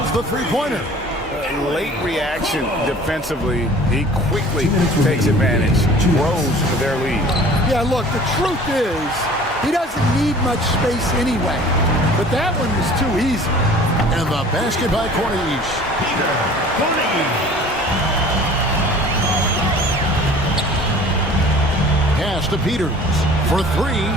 the 3-pointer. Late reaction defensively. He quickly takes advantage. Grows their lead. Yeah, look, the truth is, he doesn't need much space anyway. But that one was too easy. And the basket by Corniche. Pass to Peters for 3.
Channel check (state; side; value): normal; both; correlation 0.47